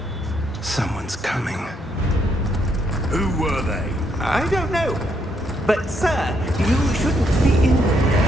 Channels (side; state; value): both; normal; correlation 0.74